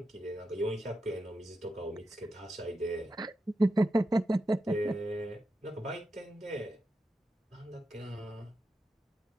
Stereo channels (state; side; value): normal; both; correlation 0.88